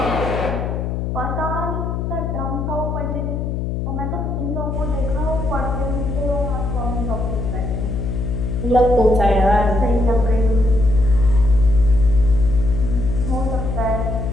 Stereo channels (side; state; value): left; noise; hum, 2 dB below the sound